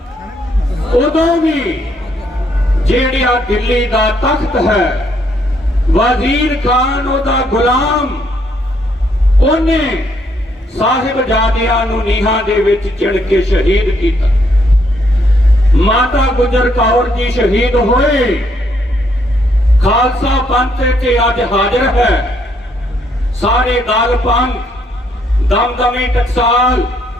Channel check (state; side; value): normal; both; correlation 0.71